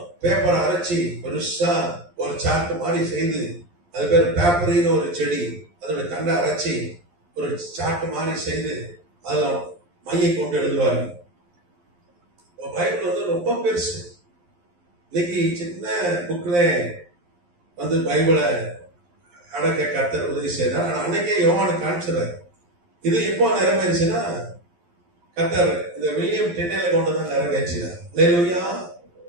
பேப்பரை அரைச்சி பெருசா ஒரு சார்ட் மாதிரி செய்து, அது பேர் பேப்பரின்னு ஒரு செடி, அதோட தண்டை அரைச்சி ஒரு சார்ட் மாதிரி செய்து அதில் மையை கொண்டு எழுதுவார்கள். பைபிள் ரொம்ப பெருசு. இன்னைக்கு சின்ன புக்ல பைபிளை அடக்க கர்த்தர் உதவி செய்தார். ஆனால் அன்னைக்கே யோவானு காமிச்சிடறாரு. இது எப்போ நிறைவேறுச்சுன்னா, கர்த்தர் இந்த வில்லியம் டென்னையில கொண்டு தான் நிறைவேற்றினார். அல்லேலூயா.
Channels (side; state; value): left; late; 11 ms